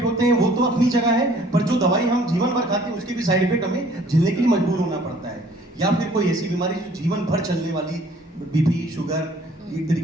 होते हैं वो तो अपनी जगह है, पर जो दवाई हम जीवन भर खाते हैं उसके भी साइड इफेक्ट हमें झेलने के लिए मजबूर होना पड़ता है। या फिर कोई ऐसी बीमारी जो जीवन भर चलने वाली, बीपी, शुगर, एक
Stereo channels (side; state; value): both; normal; correlation 0.56